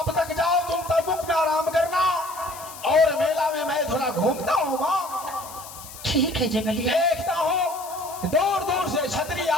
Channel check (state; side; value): noise; left; hiss, 15 dB below the sound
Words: तक जाओ तुम तंबूक में आराम करना, और मेला में मैं थोड़ा घूमता हूँ माँ। ठीक है जंगलिया। देखता हूँ दूर दूर से छतरी